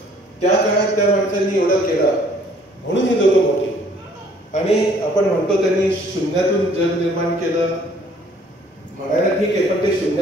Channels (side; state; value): both; normal; correlation 0.59